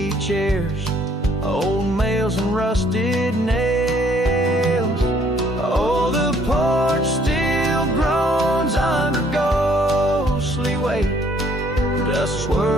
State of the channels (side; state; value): both; normal; correlation 0.63